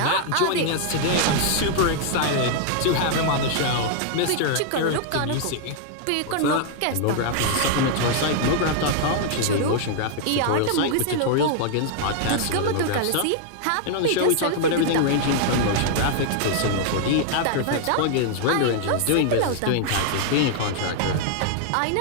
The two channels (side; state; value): both; different; correlation 0.00